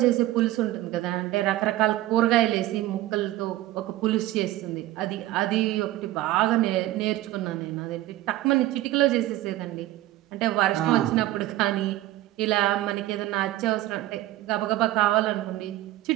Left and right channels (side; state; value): left; quieter; 15.7 dB